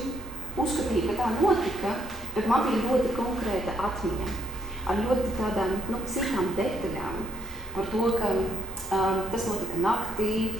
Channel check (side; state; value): both; normal; correlation 0.70